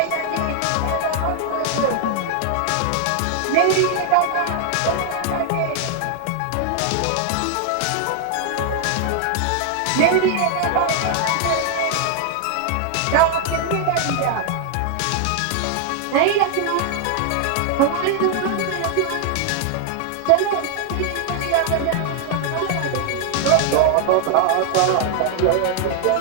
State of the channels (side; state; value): both; different; correlation 0.00